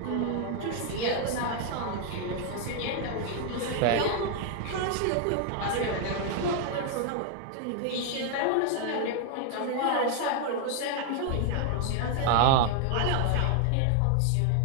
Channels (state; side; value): different; both; correlation 0.00